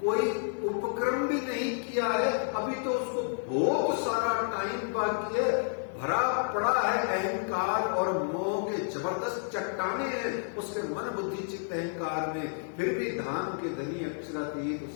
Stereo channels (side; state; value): right; silent; 57 dB below the other